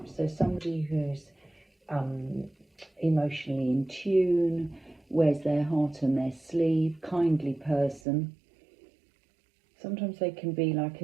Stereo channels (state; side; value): drops out; left; at 8.0 s